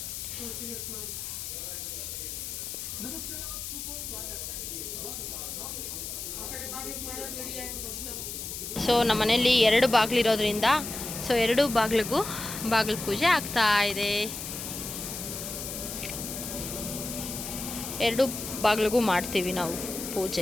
ಸೊ ನಮ್ಮ ಮನೆಯಲ್ಲಿ 2 ಬಾಗಿಲಿರೋದ್ರಿಂದ ಸೊ 2 ಬಾಗಿಲಿಗೂ ಬಾಗಿಲು ಪೂಜೆ ಆಗ್ತಾ ಇದೆ. 2 ಬಾಗಿಲಿಗೂ ಮಾಡ್ತೀವಿ ನಾವು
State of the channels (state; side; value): noise; left; hiss, 6 dB below the sound